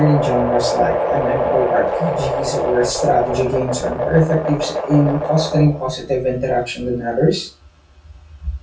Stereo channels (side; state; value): both; identical; correlation 1.00